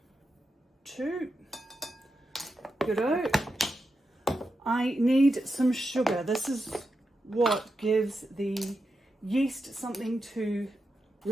2. Good-o. I need some sugar. This is what gives the yeast something to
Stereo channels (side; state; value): both; normal; correlation 0.88